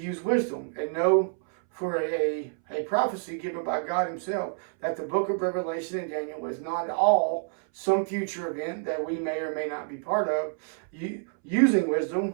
wisdom and know for a prophecy given by God himself that the book of Revelation and Daniel is not all some future event that we may or may not be part of. Using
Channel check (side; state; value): left; silent; 59 dB below the other